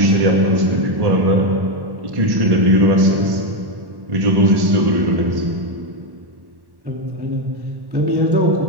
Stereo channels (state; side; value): late; left; 1.1 ms